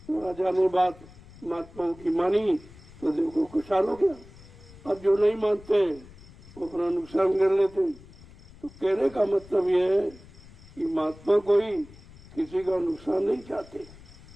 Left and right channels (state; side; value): noise; left; rumble, 21 dB below the sound